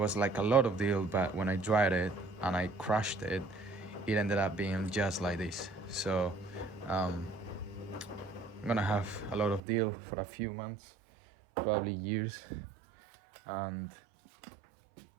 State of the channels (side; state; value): left; drops out; at 9.6 s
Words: like a lot of dill, but when I dried it and I crushed it, it ended up being just like this. So I'm gonna have a lot of dill for a few months, probably years, and